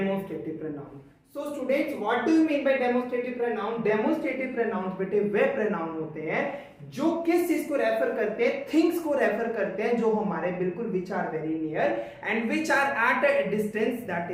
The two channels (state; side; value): identical; both; correlation 1.00